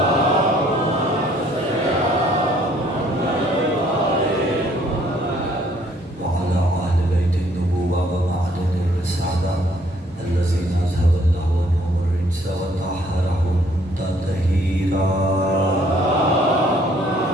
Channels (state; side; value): normal; both; correlation 0.63